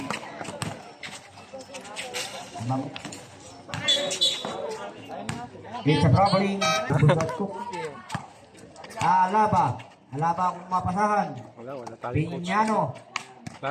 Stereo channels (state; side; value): identical; both; correlation 1.00